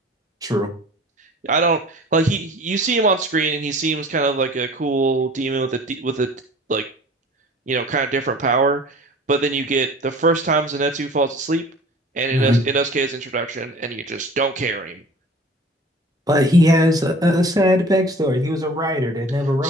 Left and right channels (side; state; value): both; normal; correlation 0.45